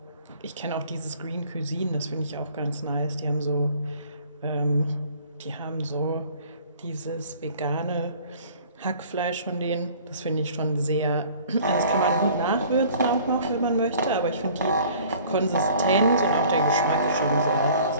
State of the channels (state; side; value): inverted; both; correlation -0.51